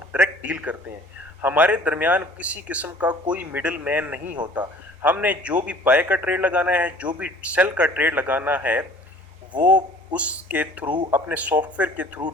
डायरेक्ट डील करते हैं। हमारे दरमियान किसी किस्म का कोई मिडिल मैन नहीं होता। हमने जो भी बाय का ट्रेड लगाना है, जो भी सेल का ट्रेड लगाना है, वो उसके थ्रू अपने सॉफ्टवेयर के थ्रू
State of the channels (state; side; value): normal; both; correlation 0.50